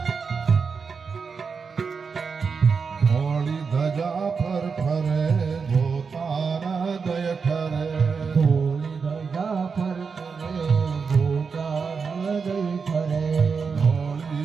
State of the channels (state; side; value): quieter; left; 5.4 dB